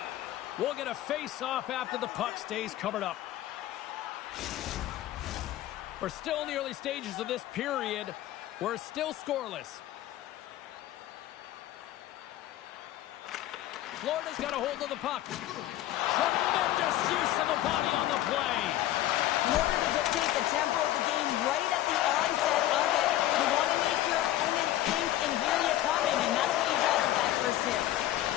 We'll get a face-off after the puck stays covered up. We're still in the early stages of this period. We're still scoreless. Florida's got a hold of the puck. Tremendous use of the body on the play. In order to dictate the tempo of the game right at the onset of it, you want to make your opponent think and hear you coming, and that's what he does with that first hit.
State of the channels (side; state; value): right; quieter; 14.0 dB